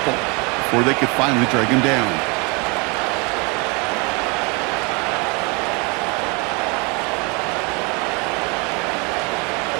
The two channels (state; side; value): quieter; left; 30.3 dB